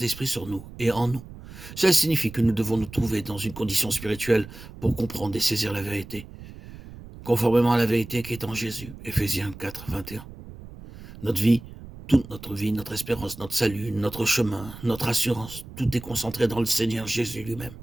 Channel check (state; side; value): noise; right; rumble, 15 dB below the sound